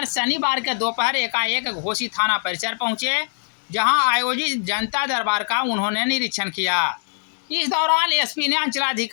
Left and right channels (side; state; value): right; silent; 64 dB below the other